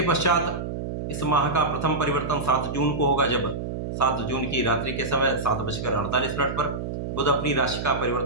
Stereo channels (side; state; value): right; noise; hum, 5 dB below the sound